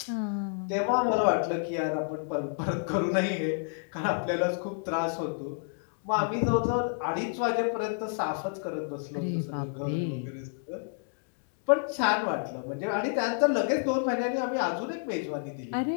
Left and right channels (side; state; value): right; silent; digital silence